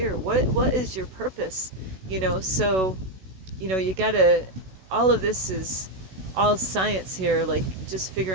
what is your purpose, so you gotta, all of this is all science here, like just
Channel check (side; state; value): left; late; 16 ms